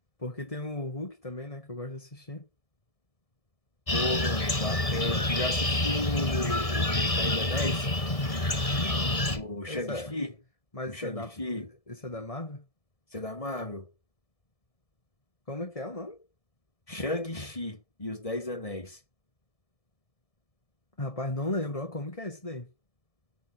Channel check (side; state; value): right; late; 1.7 ms